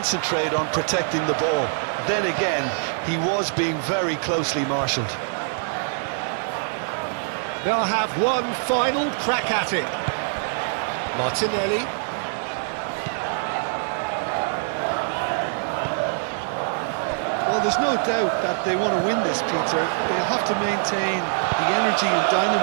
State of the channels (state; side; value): silent; left; 63 dB below the other